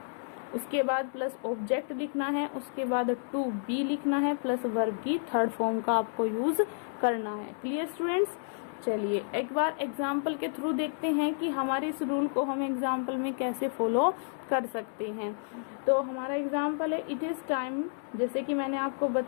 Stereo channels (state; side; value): silent; right; digital silence